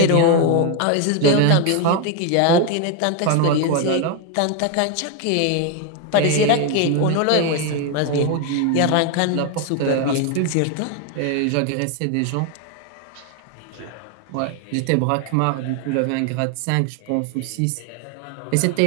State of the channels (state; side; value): different; both; correlation 0.01